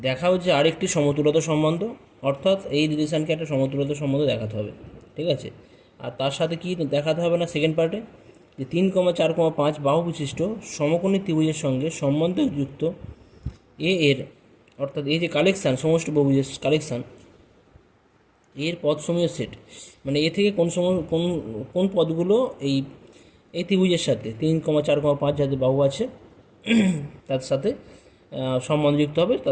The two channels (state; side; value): identical; both; correlation 1.00